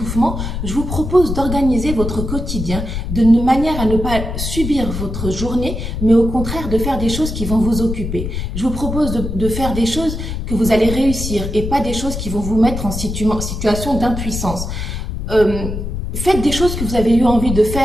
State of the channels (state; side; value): noise; left; rumble, 5 dB below the sound